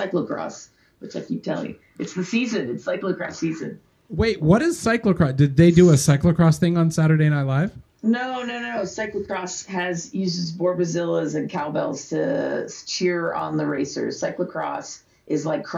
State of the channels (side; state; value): both; identical; correlation 1.00